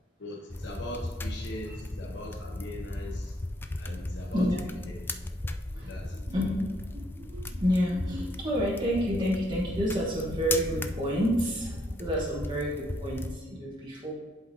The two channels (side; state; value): both; normal; correlation 0.69